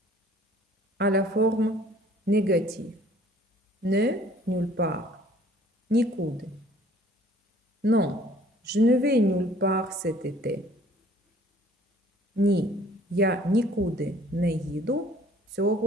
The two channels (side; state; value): both; normal; correlation 0.55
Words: À la forme négative. Ne, nulle part. Нікуди. Non, je ne vais nulle part cet été. Ні, я нікуди не їду